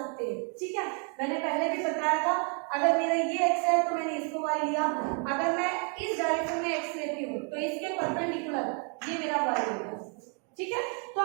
हैं, ठीक है। मैंने पहले भी बताया था, अगर मेरा ये x है तो मैंने इसको y लिया, अगर मैं इस डायरेक्शन में x लेती हूँ तो इसके परपेंडिकुलर ये मेरा y होगा, ठीक है। तो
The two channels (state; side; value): quieter; left; 39.1 dB